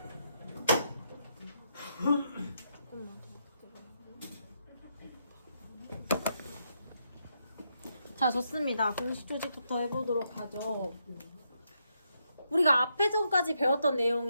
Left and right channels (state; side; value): inverted; both; correlation -0.79